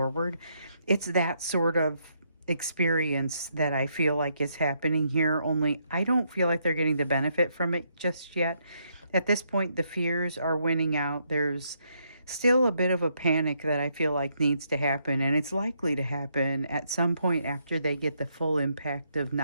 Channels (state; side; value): inverted; both; correlation -0.76